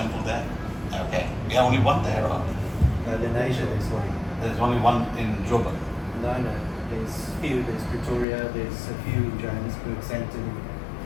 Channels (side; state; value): right; drops out; at 8.2 s